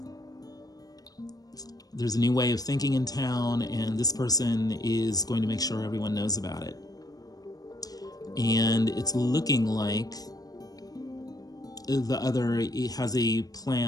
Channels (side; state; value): right; late; 0.18 ms